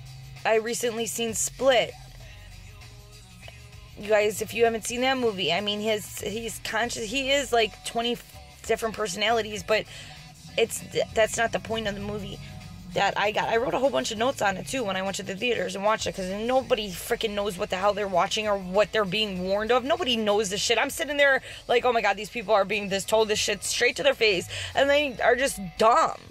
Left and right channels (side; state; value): both; identical; correlation 1.00